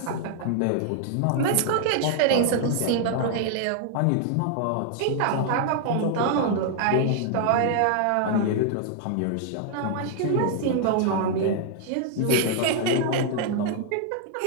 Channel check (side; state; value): both; different; correlation 0.00